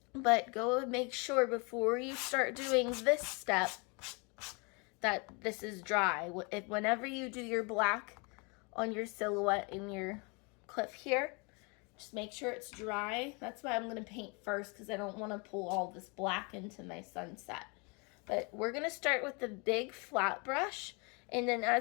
But go and make sure before you start doing this step that this is dry. Whenever you do your black on your silhouette in your cliff here, just make sure it's dry. That's why I'm going to paint first, because I don't want to pull all this black into my sunset. But we're going to start with the big flat brush, and then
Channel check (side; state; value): right; quieter; 31.4 dB